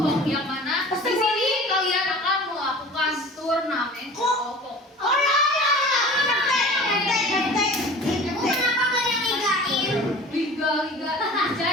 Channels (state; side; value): normal; both; correlation 0.41